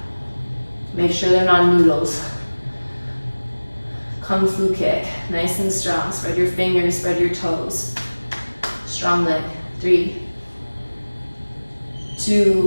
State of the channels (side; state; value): both; inverted; correlation -1.00